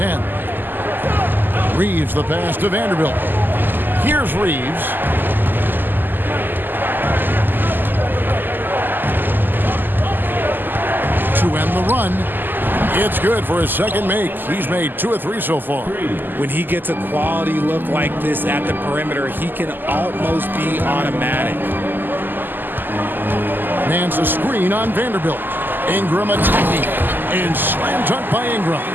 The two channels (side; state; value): left; late; 0.091 ms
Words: Reeves the pass to Vanderbilt. Here's Reeves. To end the run. It's good for his second make. He's made 2 of 3 so far. When he gets a quality look like this at the perimeter, he can almost be automatic. Nance a screen on Vanderbilt. Ingram attacking. And slam dunk by Ingram.